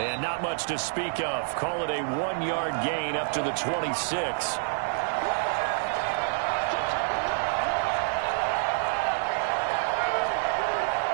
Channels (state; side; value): silent; left; digital silence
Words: not much to speak of. Call it a 1-yard gain up to the 26.